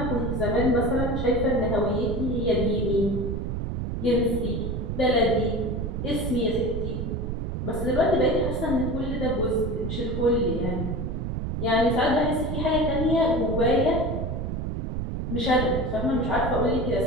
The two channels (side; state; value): right; noise; rumble, 3 dB below the sound